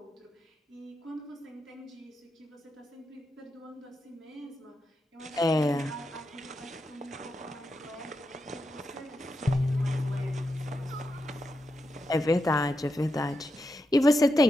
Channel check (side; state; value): both; normal; correlation 0.86